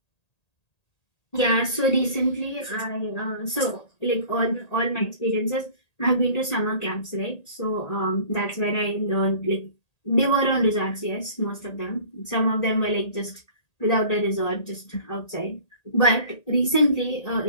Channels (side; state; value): right; late; 1.8 ms